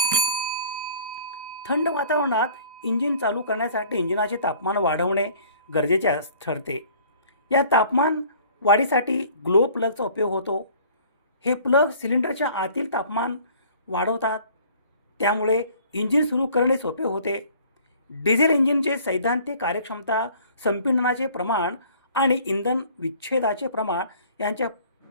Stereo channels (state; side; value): inverted; both; correlation -0.52